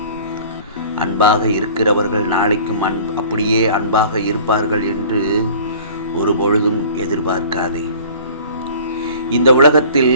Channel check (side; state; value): both; inverted; correlation -0.46